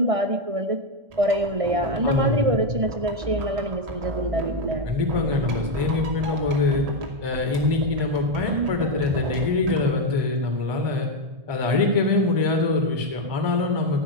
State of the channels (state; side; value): late; left; 1.8 ms